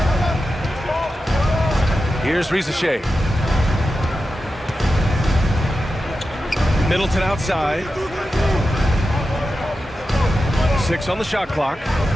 Here's Rizachet. Middleton outside. 6 on the shot clock.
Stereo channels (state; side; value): normal; both; correlation 0.91